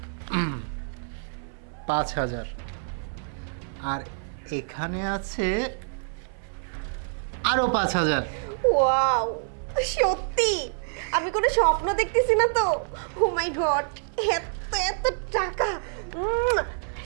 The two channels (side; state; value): left; silent; 59 dB below the other